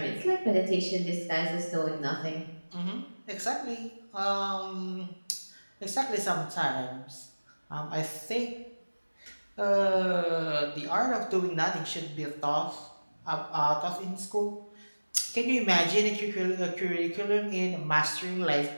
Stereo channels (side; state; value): both; inverted; correlation -1.00